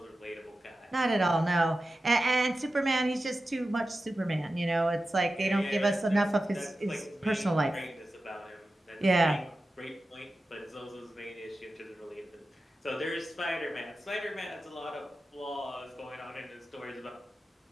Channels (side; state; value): both; normal; correlation 0.93